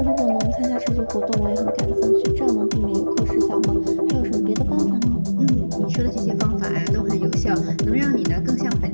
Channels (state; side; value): inverted; both; correlation -1.00